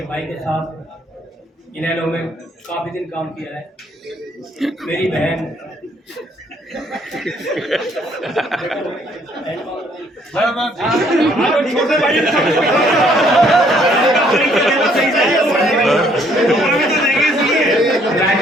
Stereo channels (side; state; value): both; normal; correlation 0.65